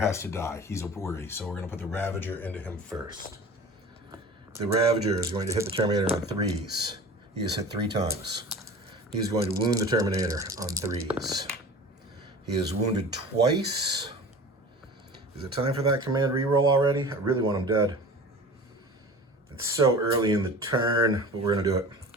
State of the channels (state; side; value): normal; both; correlation 0.38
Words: to die. He's a worry, so we're going to put the Ravager into him first. The Ravager is going to hit the Terminator on 3s. He has hit 3 times. He's going to wound the Terminator on 3s. He is wounded twice. Is it time for that command reroll already? I really want him dead. It's so early in the turn, but we're going to do it.